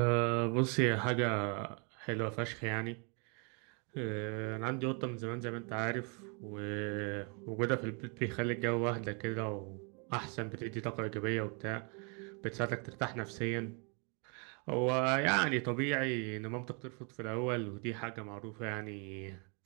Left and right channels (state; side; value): quieter; left; 35.6 dB